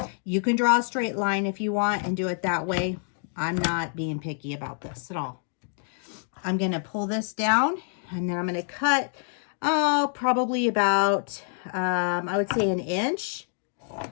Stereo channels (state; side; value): silent; right; 60 dB below the other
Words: You can draw a straight line if you want and do it that way. I'm not being picky about this at all. I'm going to pull this down and then I'm going to cut, probably about, I would say 1 inch